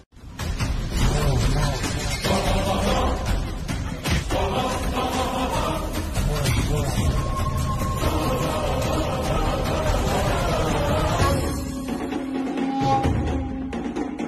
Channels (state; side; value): identical; both; correlation 1.00